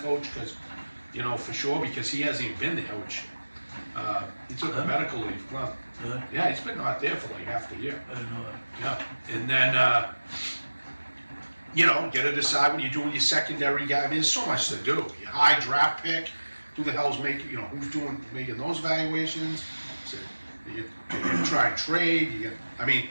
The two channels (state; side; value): inverted; both; correlation -1.00